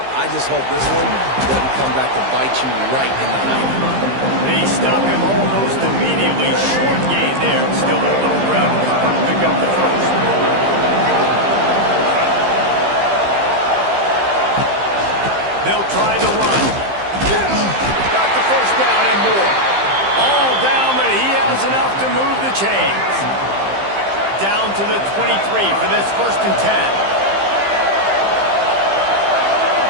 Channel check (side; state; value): left; late; 15 ms